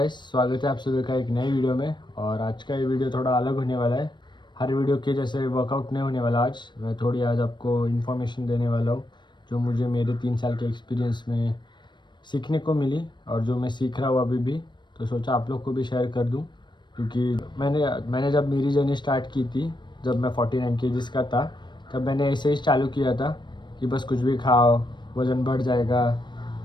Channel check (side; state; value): right; late; 0.22 ms